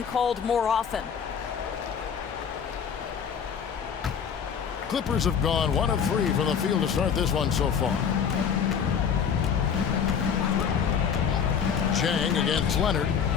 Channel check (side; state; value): right; quieter; 7.3 dB